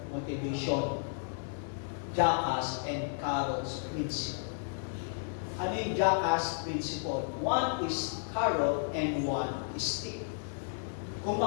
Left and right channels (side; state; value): right; silent; digital silence